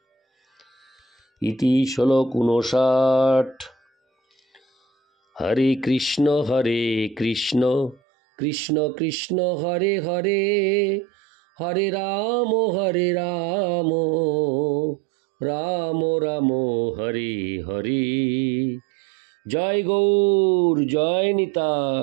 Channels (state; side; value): drops out; left; at 8.0 s